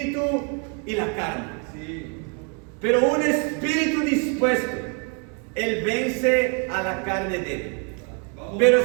y la carne. Pero un espíritu dispuesto, Él vence a la carne débil. Pero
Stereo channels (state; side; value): quieter; left; 37.7 dB